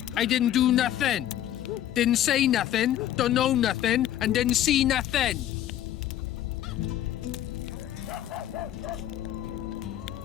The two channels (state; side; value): quieter; right; 12.0 dB